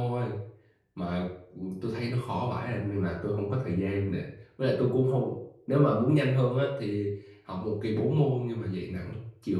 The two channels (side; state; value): both; identical; correlation 1.00